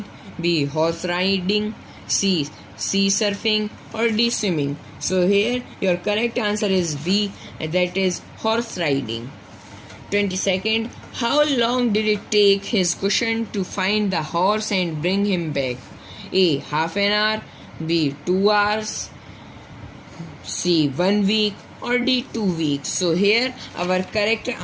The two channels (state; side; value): identical; both; correlation 1.00